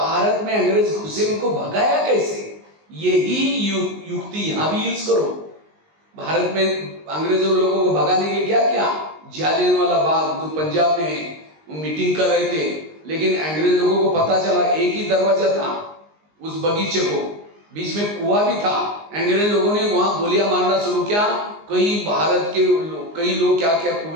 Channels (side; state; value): left; late; 19 ms